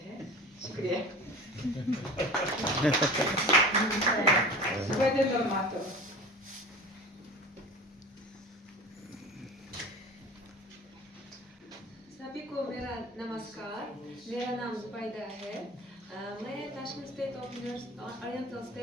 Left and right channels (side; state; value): both; normal; correlation 0.37